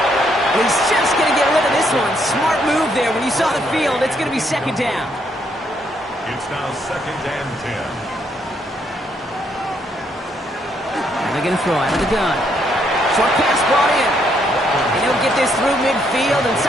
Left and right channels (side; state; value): both; normal; correlation 0.73